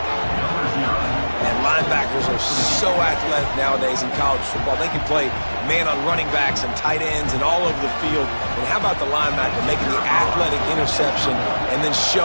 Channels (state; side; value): inverted; both; correlation -1.00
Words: Linebackers are so athletic nowadays in college football. They can play man on running backs and tight ends and all over the field. And how about the linebacker making the athletic interception and then